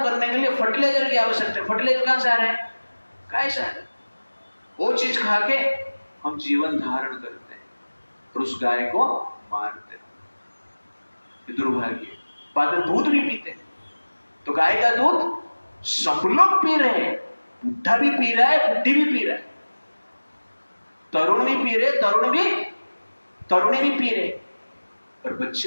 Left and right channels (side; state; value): both; inverted; correlation -1.00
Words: करने के लिए फर्टिलाइजर की आवश्यकता है, फर्टिलाइजर कहां से आ रहा है, गाय से। वो चीज खा के हम जीवन धारण करते हैं और उस गाय को मारते हैं। दुर्भाग्य। बाद में दूध भी पीते हैं। तो गाय का दूध सब लोग पी रहे हैं, बुढ़ा भी पी रहा है, बुढ़ी भी पी रहा है, तरुण भी पी रहे, तरुणी भी पी रहे, और